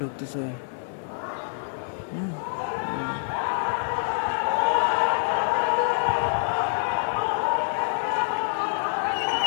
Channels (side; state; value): right; silent; digital silence